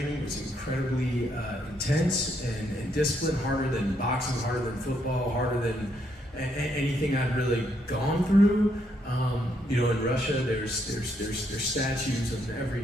It was incredibly intense and disciplined, harder than boxing, harder than football, harder than anything I'd really gone through. You know, in Russia, there's statues on every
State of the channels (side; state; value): both; normal; correlation 0.75